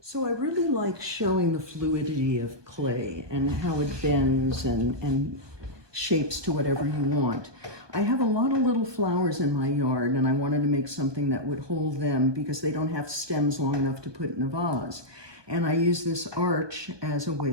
So I really like showing the fluidity of clay and how it bends and shapes to whatever you want. I have a lot of little flowers in my yard, and I wanted to make something that would hold them because they don't have stems long enough to put in a vase. And I use this arch as a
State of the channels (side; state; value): left; late; 1.2 ms